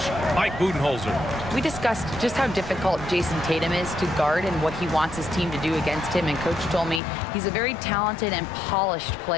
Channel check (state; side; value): drops out; right; at 7.0 s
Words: Mike Budenholzer. We discussed just how difficult Jason Tatum is to guard and what he wants his team to do against him, and Coach told me he's a very talented and polished